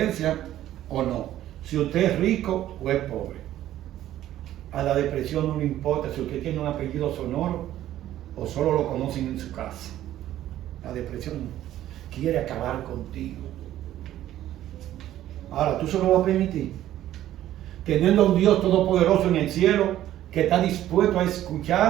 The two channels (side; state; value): left; quieter; 13.0 dB